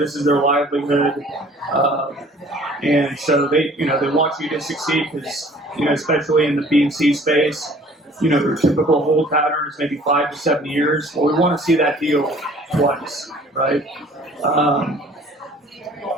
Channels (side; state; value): both; normal; correlation 0.52